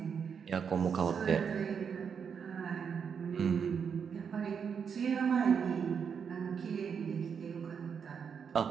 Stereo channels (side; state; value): left; quieter; 6.8 dB